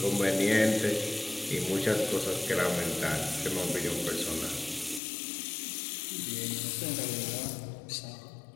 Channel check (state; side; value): drops out; right; at 5.0 s